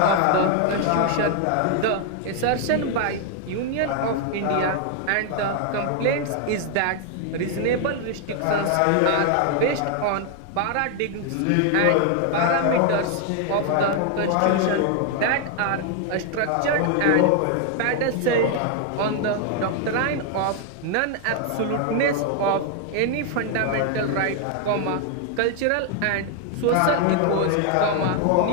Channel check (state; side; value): different; both; correlation 0.00